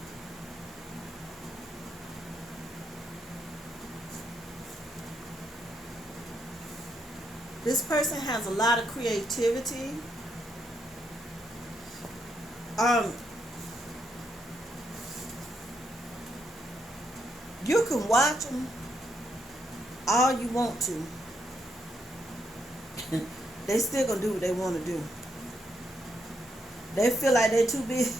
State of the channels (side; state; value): both; normal; correlation 0.78